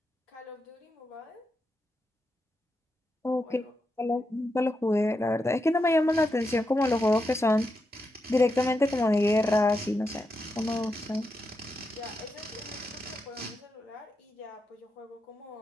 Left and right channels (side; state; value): both; normal; correlation 0.86